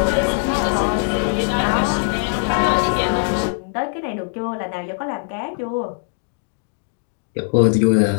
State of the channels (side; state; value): right; silent; digital silence